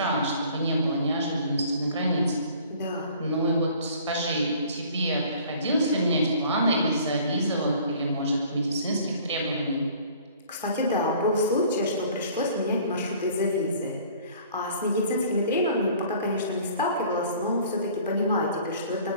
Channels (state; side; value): inverted; both; correlation -0.51